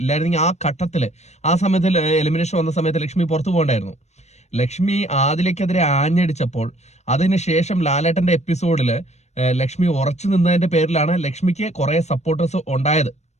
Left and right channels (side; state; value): right; late; 0.32 ms